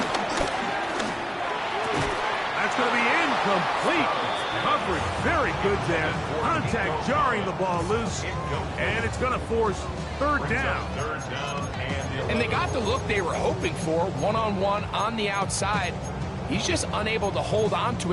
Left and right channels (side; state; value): both; identical; correlation 1.00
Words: That's going to be incomplete. Coverage very good there. Contact jarring the ball loose. And it's going to force 3rd down. And they got the look they were hoping for, one-on-one on the outside. He's just unable to hold on to